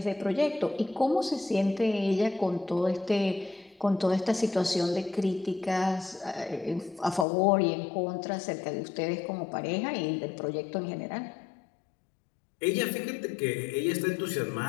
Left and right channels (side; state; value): right; drops out; at 7.2 s